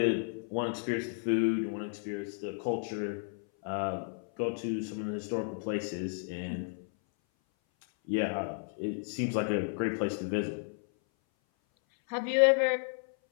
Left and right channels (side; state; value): right; silent; 56 dB below the other